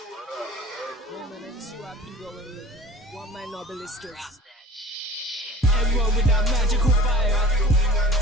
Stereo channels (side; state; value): both; normal; correlation 0.43